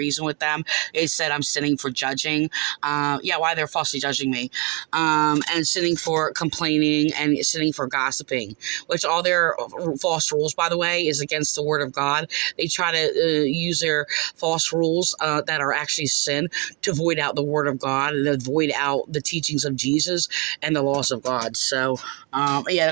with them. They said I'm sinning for judging. Why they're falsely judging me. And sinning for complaining and sinning for gossiping, which all their false rules, by the way, is against the word of God. They try to use their false rules that are actually sin to void out the word of God and to void out the teachings of Jesus and the laws of God. So, they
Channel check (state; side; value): quieter; left; 25.3 dB